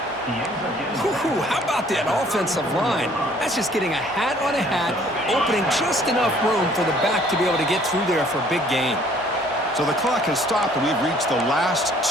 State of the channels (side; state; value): both; normal; correlation 0.58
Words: Whew, how about that offensive line? That's just getting a hat on a hat, opening just enough room for the back to be able to get through there for a big gain. So the clock has stopped, and we've reached the last